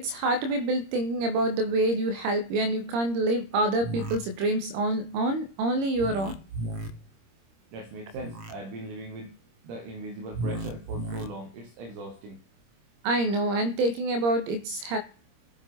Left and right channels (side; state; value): left; late; 26 ms